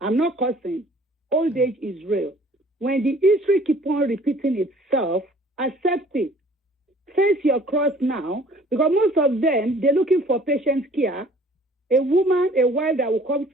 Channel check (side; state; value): both; normal; correlation 0.53